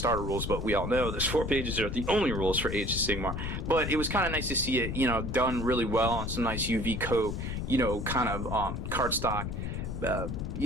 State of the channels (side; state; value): left; noise; rumble, 4 dB below the sound